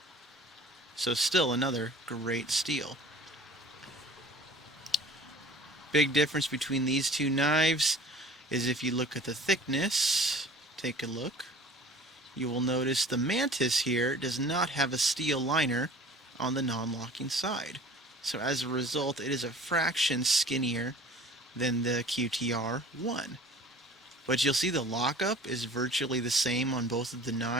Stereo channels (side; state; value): both; normal; correlation 0.46